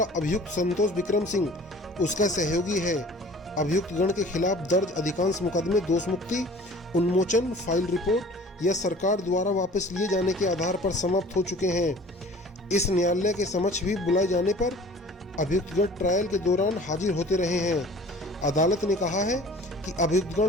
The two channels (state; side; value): normal; both; correlation 0.47